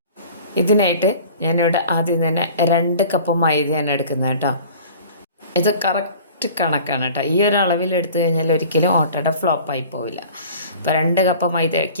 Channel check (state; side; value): inverted; both; correlation -0.45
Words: ഇതിനായിട്ട് ഞാനിവിടെ ആദ്യം തന്നെ 2 കപ്പ് മൈദയാണ് എടുക്കുന്നത് കേട്ടോ. ഇത് കറക്റ്റ് കണക്കാണ് കേട്ടോ. ഈ ഒരു അളവിൽ എടുത്തു കഴിഞ്ഞാൽ ഒരിക്കലും ഓട്ടട ഫ്ലോപ്പായി പോവില്ല. അപ്പോൾ 2 കപ്പ്